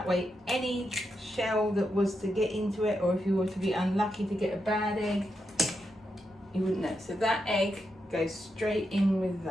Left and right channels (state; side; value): normal; both; correlation 0.85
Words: way any shell that was to get into it, or if you were to be unlucky to get a bad egg, you wouldn't know. So that egg goes straight in with